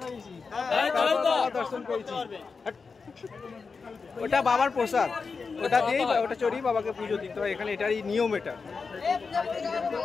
দাঁড়িয়েছি। দর্শন করেছি। ওটা বাবার প্রসাদ, ওটা দিয়েই, ওটা চড়িয়ে বাবাকে পুজো দিতে হয় এখানে। এটারই নিয়ম এটা।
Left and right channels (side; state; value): right; quieter; 4.9 dB